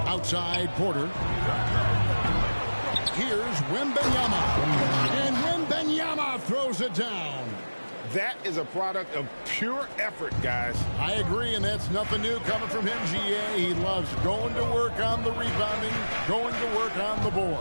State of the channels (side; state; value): both; inverted; correlation -1.00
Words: Outside Porter. Here's Wembanyama. And Wembanyama throws it down. That is a product of pure effort, guys. I agree, and that's nothing new coming from him, GA. He loves going to work on the rebounding, going to work on the board.